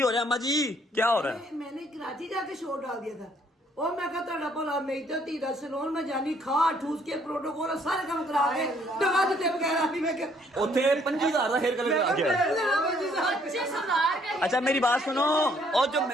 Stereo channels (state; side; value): normal; both; correlation 0.65